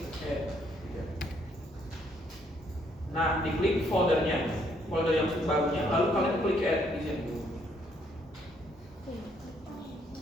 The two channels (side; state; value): both; normal; correlation 0.69